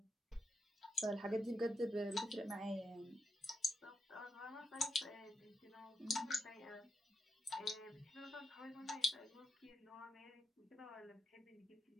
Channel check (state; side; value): normal; both; correlation 0.82